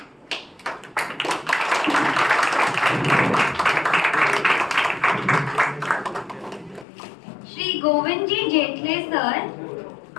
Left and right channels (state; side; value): drops out; right; at 6.9 s